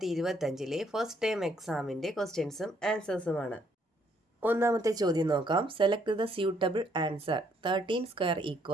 ഫസ്റ്റ് ടൈം എക്സാമിൻ്റെ ക്വസ്റ്റ്യൻസും ആൻസേഴ്സുമാണ്. ഒന്നാമത്തെ ചോദ്യം നോക്കാം. Select the suitable answer. 13²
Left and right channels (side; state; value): both; normal; correlation 0.69